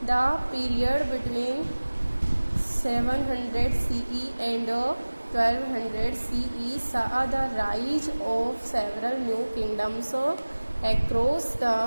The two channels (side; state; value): both; inverted; correlation -1.00